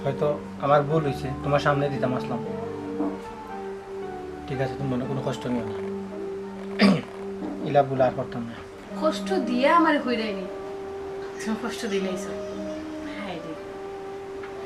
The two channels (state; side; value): identical; both; correlation 1.00